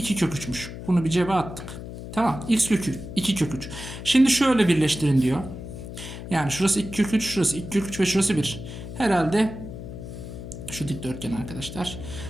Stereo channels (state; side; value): noise; left; hum, 10 dB below the sound